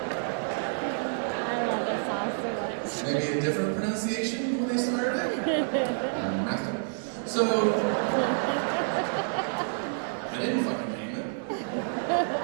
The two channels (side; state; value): left; silent; digital silence